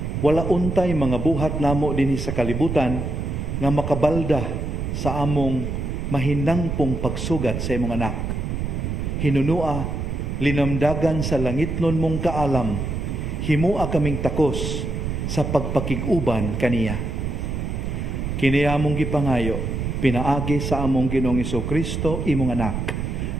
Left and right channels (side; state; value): right; noise; rumble, 3 dB below the sound